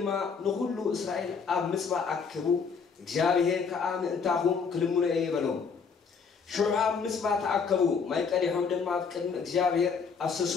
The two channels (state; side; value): quieter; right; 5.7 dB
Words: نخلو إسرائيل أب مصبع أكبو إخزيابير كأم انتاهم كلمون أيبالهم شعب مصبع تأكبو ما يكاليهم دما بكلم إخزيابير